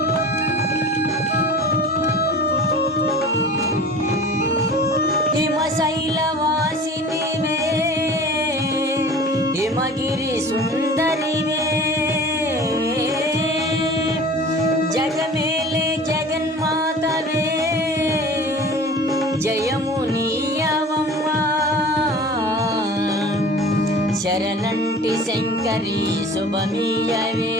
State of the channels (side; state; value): both; normal; correlation 0.41